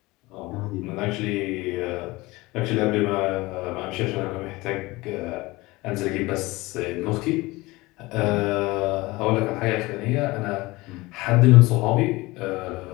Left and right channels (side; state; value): right; quieter; 21.5 dB